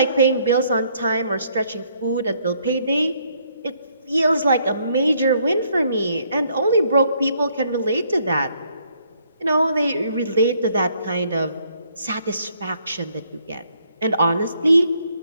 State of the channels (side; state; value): both; inverted; correlation -0.69